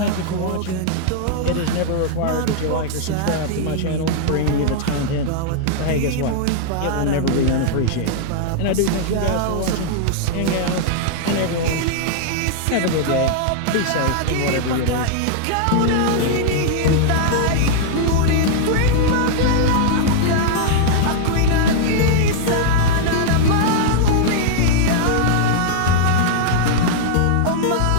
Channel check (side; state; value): both; different; correlation -0.01